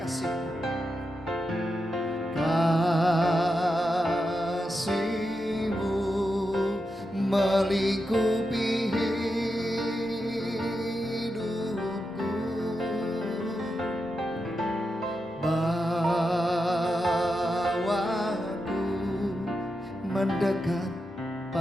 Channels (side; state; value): both; normal; correlation 0.88